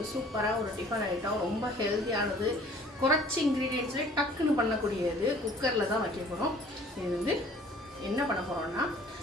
சூப்பராக ஒரு டிஃபன் ஐட்டம், ரொம்ப ஹெல்த்தியானது, குறைச்சி இன்க்ரீடியன்ட்ஸ்லேயே டக்குன்னு பண்ணக்கூடியது. குக்கரில் தான் வைக்க போகிறோம். இது வந்து என்ன பண்ண போகிறோம்னா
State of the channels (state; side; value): normal; both; correlation 0.53